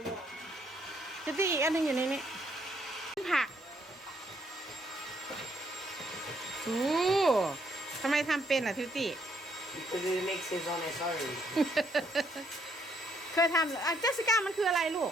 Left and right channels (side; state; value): both; normal; correlation 0.71